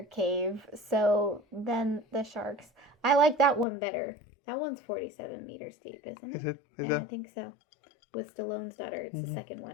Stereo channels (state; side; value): drops out; right; at 3.7 s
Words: cave, so then the sharks. I like that one better. That one's 47 meters deep, isn't it? Is it? I think so. With Stallone's daughter, it's the second